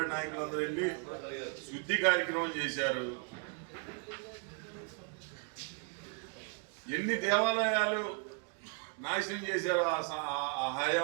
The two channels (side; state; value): left; quieter; 38.9 dB